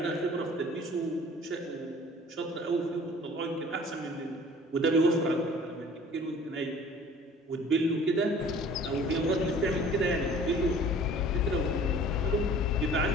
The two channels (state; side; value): normal; both; correlation 0.49